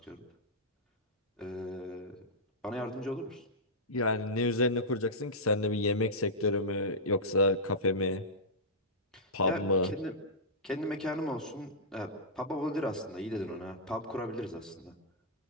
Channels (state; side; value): normal; both; correlation -0.12